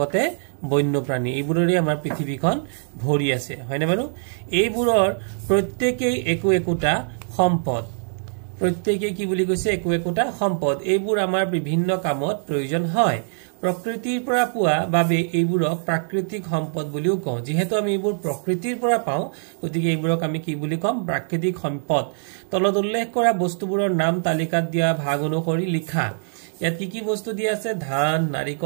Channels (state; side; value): silent; left; digital silence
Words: বন্যপ্ৰাণী এইবোৰৰে আমাৰ পৃথিৱীখন ভৰি আছে হয়নে বাৰু এইবোৰৰ প্ৰত্যেকই একোটা সম্পদ প্ৰত্যেকই কি বুলি কৈছে একোটা সম্পদ এইবোৰ আমাৰ বিভিন্ন কামত প্ৰয়োজন হয় প্ৰকৃতিৰ পৰা পোৱা বাবে এইবোৰক প্ৰাকৃতিক সম্পদ বুলিও কওঁ যেহেতু আমি এইবোৰ প্ৰকৃতিৰ পৰা পাওঁ গতিকে এইবোৰক আমি কি বুলি কম প্ৰাকৃতিক সম্পদ তলত উল্লেখ কৰা বস্তুবোৰৰ নাম তালিকাত দিয়া ভাগ অনুসৰি লিখা ইয়াত কি বস্তু দিয়া আছে ধান